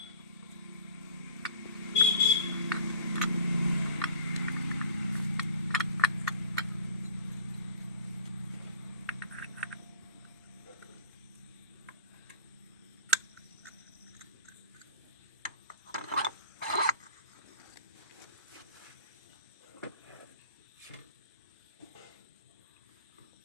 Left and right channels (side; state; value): both; inverted; correlation -0.43